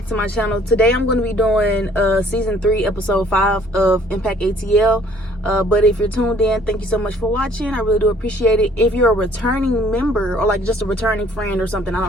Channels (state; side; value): normal; both; correlation 0.58